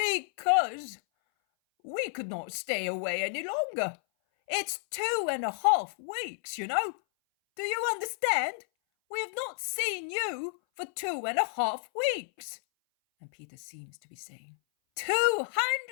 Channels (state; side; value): silent; right; 57 dB below the other